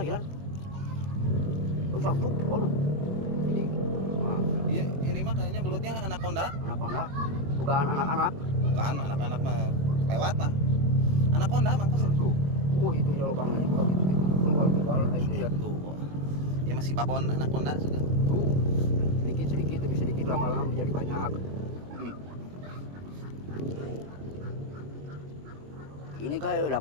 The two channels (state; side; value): late; left; 21 ms